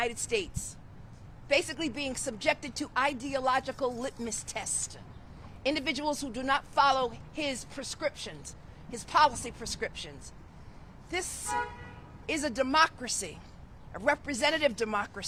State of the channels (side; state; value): both; identical; correlation 1.00